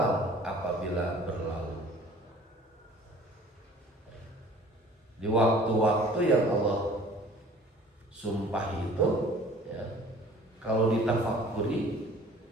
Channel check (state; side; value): normal; both; correlation 0.49